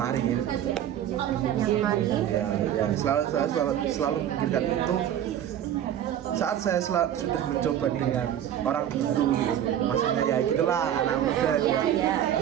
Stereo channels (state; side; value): quieter; left; 10.6 dB